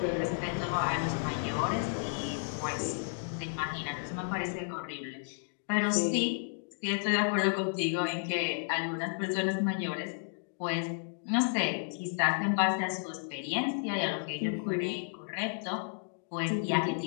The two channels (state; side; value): silent; right; digital silence